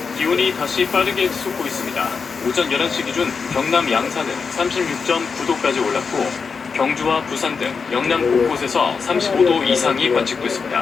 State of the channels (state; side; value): quieter; right; 5.4 dB